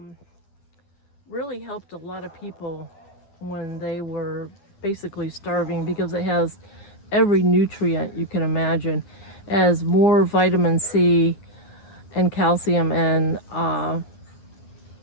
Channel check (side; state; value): right; late; 10 ms